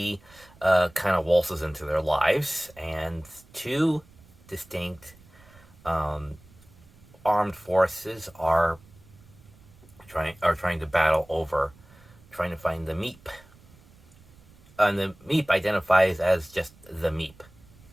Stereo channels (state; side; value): noise; right; rumble, 25 dB below the sound